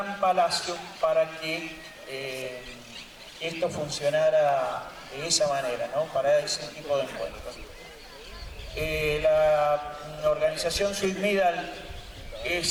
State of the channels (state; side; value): identical; both; correlation 1.00